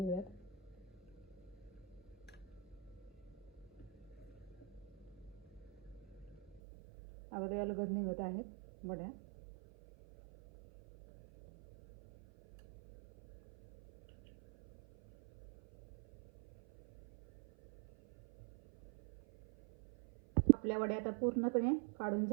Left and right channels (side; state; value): left; drops out; at 6.6 s